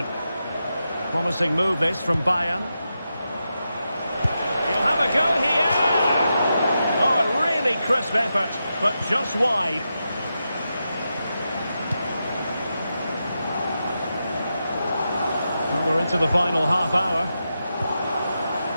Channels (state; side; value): inverted; both; correlation -0.88